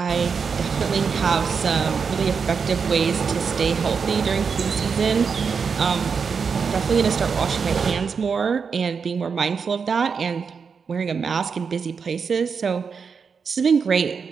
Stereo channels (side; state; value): left; quieter; 5.8 dB